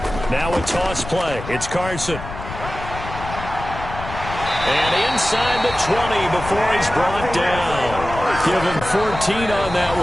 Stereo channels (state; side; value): noise; left; rumble, 10 dB below the sound